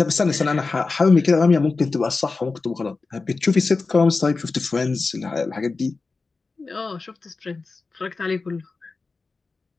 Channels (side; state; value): right; quieter; 4.0 dB